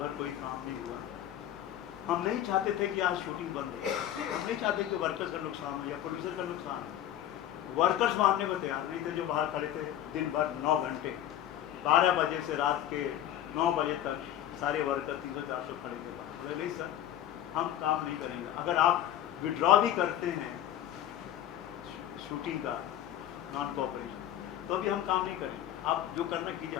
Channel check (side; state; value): right; quieter; 11.6 dB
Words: भर कोई काम नहीं हुआ. हम नहीं चाहते थे कि आज शूटिंग बंद हो. हम नहीं चाहते कि वर्कर्स का नुकसान हो या प्रोड्यूसर का नुकसान हो. वर्कर्स मानने को तैयार नहीं थे जो बाहर खड़े थे दिन भर 9 घंटे, 12 बजे से रात के 9 बजे तक सारे वर्कर 300-400 खड़े थे बाहर. बोले नहीं सर, हम काम नहीं करेंगे. अगर आप विड्रॉ भी करते हैं शूटिंग का नॉन कोऑपरेशन तो भी हम काम नहीं करेंगे. आप जो करना कीजिए,